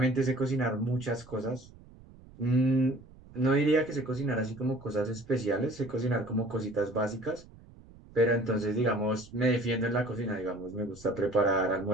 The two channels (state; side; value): noise; right; rumble, 22 dB below the sound